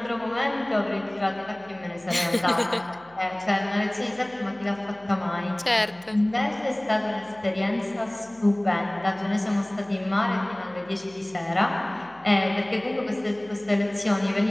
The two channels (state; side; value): noise; left; hum, 29 dB below the sound